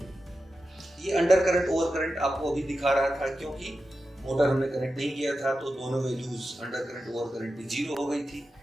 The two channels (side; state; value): both; normal; correlation 0.91